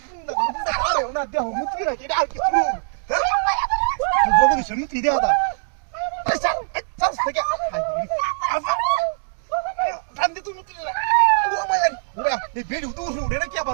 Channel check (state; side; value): silent; left; digital silence